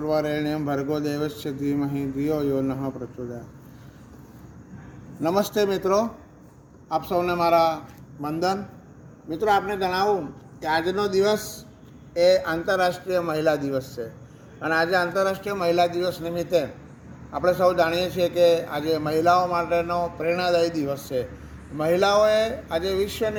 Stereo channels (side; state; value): both; identical; correlation 1.00